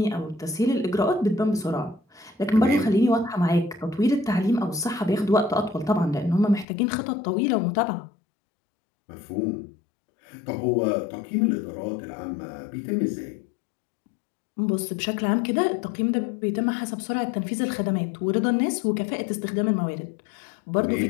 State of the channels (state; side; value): drops out; right; at 6.7 s